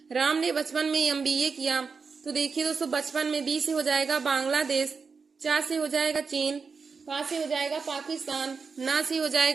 राम ने बचपन में MBA किया। तो देखिए दोस्तों, बचपन में B से हो जाएगा बांग्लादेश, चा से हो जाएगा चीन, पा से हो जाएगा पाकिस्तान, ना से हो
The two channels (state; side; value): quieter; left; 5.1 dB